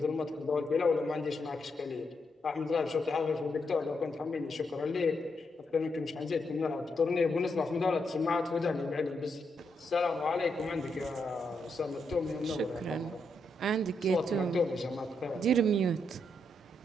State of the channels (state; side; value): normal; both; correlation 0.81